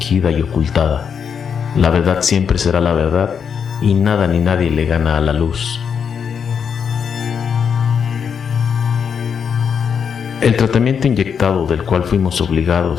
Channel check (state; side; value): quieter; right; 7.0 dB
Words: y ocultada. La verdad siempre será la verdad y nada ni nadie le gana a la luz. El tratamiento inyectado del cual fuimos